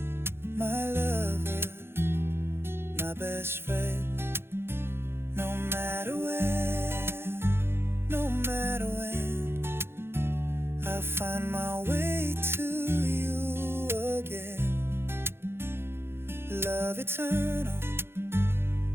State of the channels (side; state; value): left; late; 0.11 ms